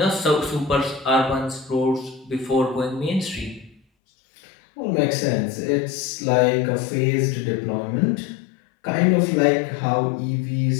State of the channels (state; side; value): drops out; right; at 3.8 s